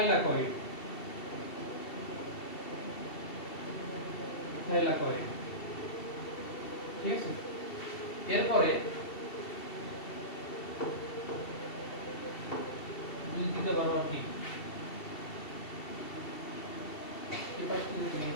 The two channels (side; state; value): right; late; 2.7 ms